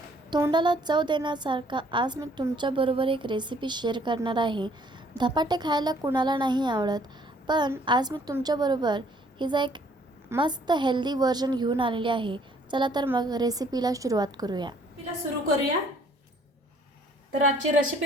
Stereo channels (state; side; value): normal; both; correlation 0.61